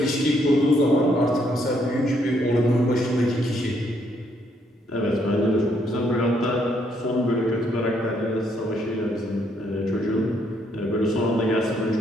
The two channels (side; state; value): both; normal; correlation 0.72